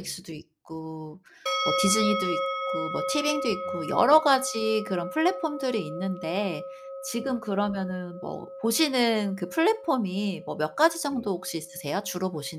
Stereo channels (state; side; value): identical; both; correlation 1.00